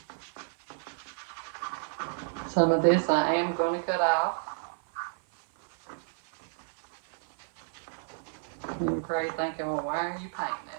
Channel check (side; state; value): left; silent; 57 dB below the other